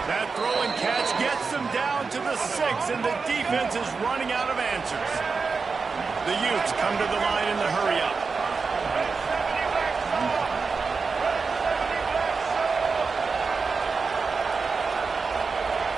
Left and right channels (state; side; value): quieter; left; 4.8 dB